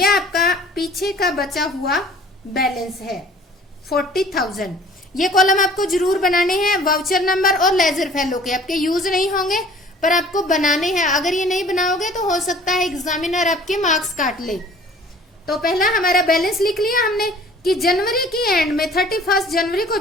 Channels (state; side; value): normal; both; correlation 0.50